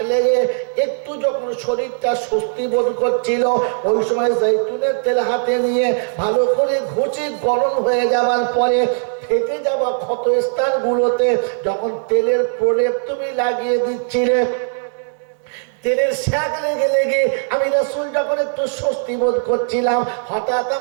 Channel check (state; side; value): silent; left; digital silence